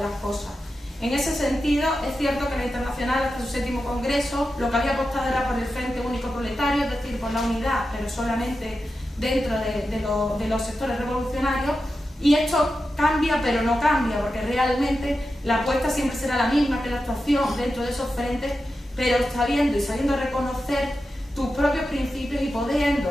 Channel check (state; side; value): normal; both; correlation 0.91